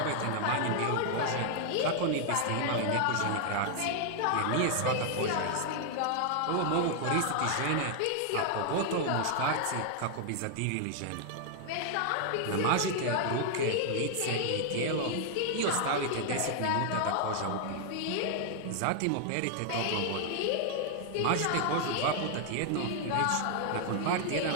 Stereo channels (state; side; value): different; both; correlation 0.00